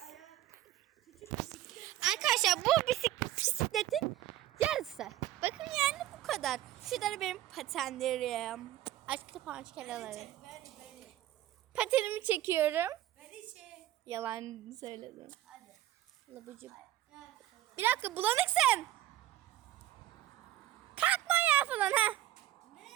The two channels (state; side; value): quieter; left; 14.0 dB